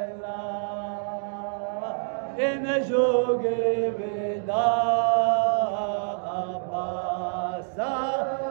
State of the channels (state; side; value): silent; left; digital silence